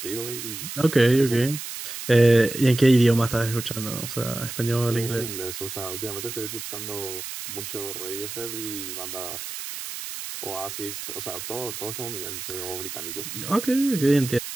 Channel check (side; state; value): right; noise; hiss, 8 dB below the sound